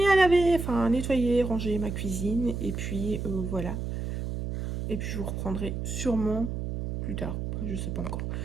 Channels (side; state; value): right; noise; hum, 3 dB below the sound